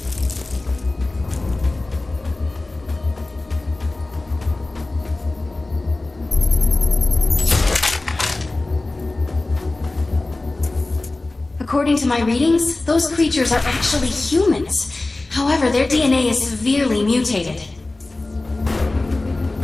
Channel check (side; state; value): right; quieter; 3.0 dB